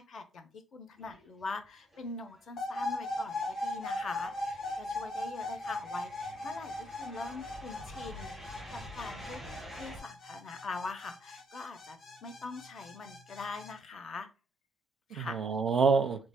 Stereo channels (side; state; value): both; normal; correlation 0.72